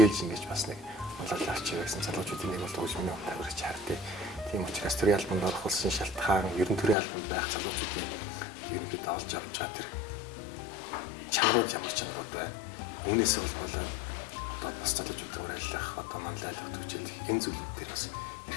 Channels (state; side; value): drops out; right; at 7.0 s